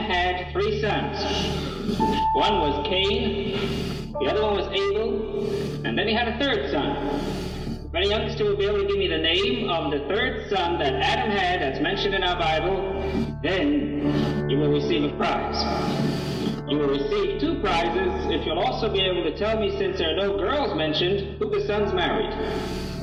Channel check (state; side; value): identical; both; correlation 1.00